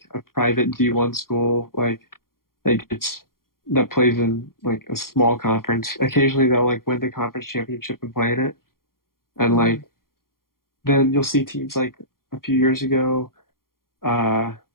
a private D1 school, like it's that plays in like a small conference. Occasionally they'll like win the conference championship and play in it. And Mm-hmm. like then you'll see teams like a few years ago, uh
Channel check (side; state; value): right; late; 0.92 ms